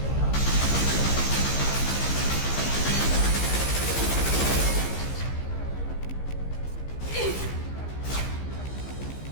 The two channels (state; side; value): late; right; 15 ms